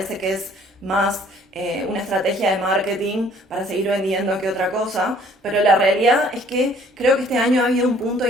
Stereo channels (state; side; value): normal; both; correlation 0.57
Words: que es más una estrategia de marketing para seguir vendiendo que otra cosa, pero la realidad es que creo que este año ha habido un punto